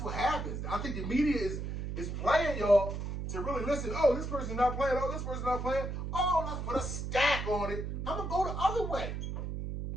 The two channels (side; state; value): right; noise; hum, 4 dB below the sound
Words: what happens. I think the media is playing y'all to really listen. Oh, this person's not playing. Oh, this person's not playing. Oh, let's put a stack on it. I'm going to go the other way.